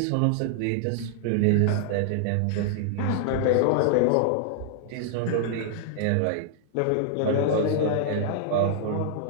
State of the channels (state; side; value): different; both; correlation -0.01